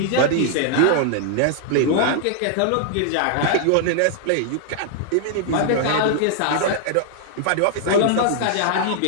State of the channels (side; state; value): both; different; correlation 0.00